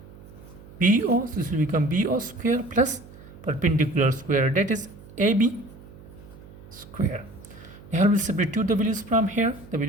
BO. So this will become BO square plus perpendicular square, that is AB square. Here we'll substitute the values from here. The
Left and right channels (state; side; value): noise; right; hum, 19 dB below the sound